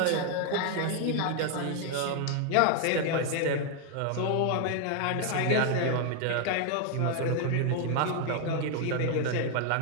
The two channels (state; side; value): different; both; correlation 0.00